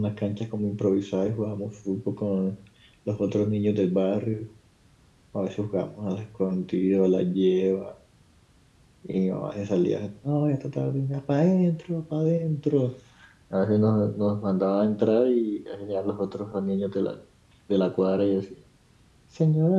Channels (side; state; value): both; identical; correlation 1.00